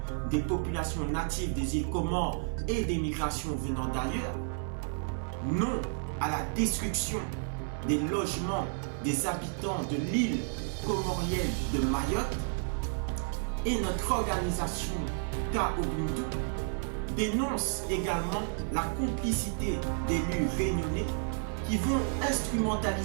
des populations natives des îles Comores et des migrations venant d'ailleurs. Non à la destruction des logements des habitants de l'île comorienne de Mayotte. Et notre organisation K-Ubuntu dénonce également la complicité d'élus réunionnais qui vont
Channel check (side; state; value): left; silent; 57 dB below the other